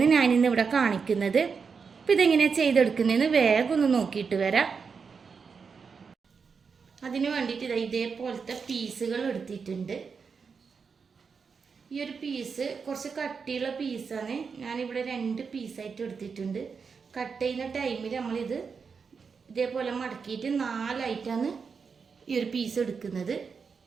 ഞാനിന്ന് ഇവിടെ കാണിക്കുന്നത്. അപ്പോൾ ഇതെങ്ങനെയാണ് ചെയ്തെടുക്കുന്നതെന്ന് വേഗം ഒന്ന് നോക്കിയിട്ട് വരാം. അതിന് വേണ്ടിയിട്ട് ഇതേപോലത്തെ പീസുകൾ എടുത്തിട്ടുണ്ട്. ഈ ഒരു പീസ് കുറച്ച് കട്ടിയുള്ള പീസാണ്. ഞാനിവിടെ 2 പീസായിട്ട് എടുത്തിട്ടുണ്ട്. കട്ട് ചെയ്യുന്ന ടൈമിൽ നമ്മളിത് ഇതേപോലെ മടക്കിയിട്ട് 4ആയിട്ടാണ് ഈ ഒരു പീസ് എടുക്കുന്നത്.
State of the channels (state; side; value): quieter; left; 5.6 dB